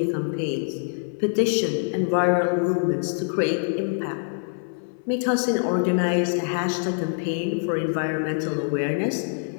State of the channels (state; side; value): silent; right; 60 dB below the other